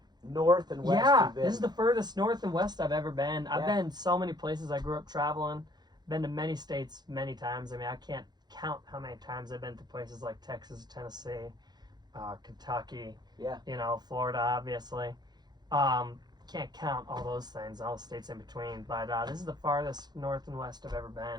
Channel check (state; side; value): late; left; 0.20 ms